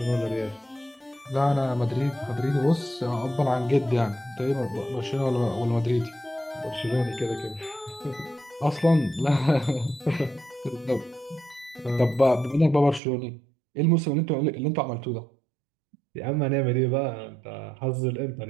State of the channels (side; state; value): left; drops out; at 13.0 s